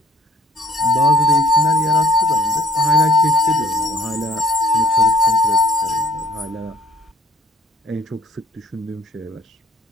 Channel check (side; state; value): both; normal; correlation 0.56